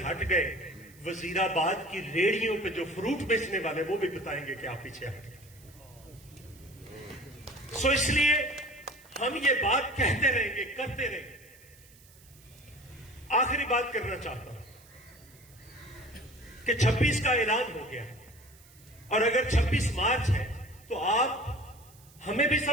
हट गए, वजीराबाद की रेहड़ियों पे जो फ्रूट बेचने वाले वो भी बताएंगे कि आप पीछे हट गए। सो इसलिए हम ये बात कहते रहेंगे, करते रहेंगे। आखिरी बात करना चाहता हूं कि 26 का ऐलान हो गया, और अगर 26 मार्च है तो आप हमें भी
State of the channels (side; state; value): right; noise; hiss, 25 dB below the sound